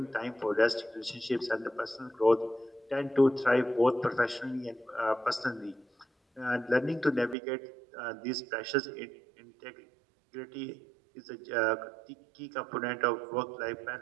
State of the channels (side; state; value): left; drops out; at 7.4 s